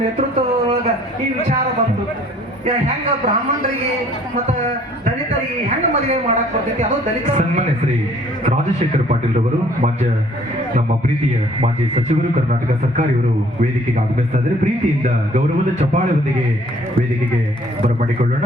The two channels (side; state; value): both; normal; correlation 0.58